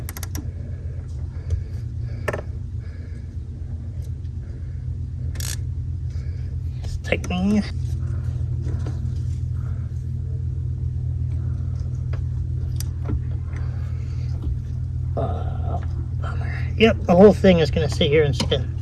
Just tightening. Bummer. Yep, the whole thing is going to sit here and spin.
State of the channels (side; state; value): both; identical; correlation 1.00